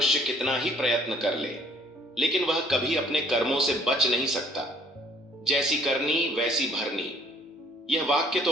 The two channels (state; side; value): normal; both; correlation 0.59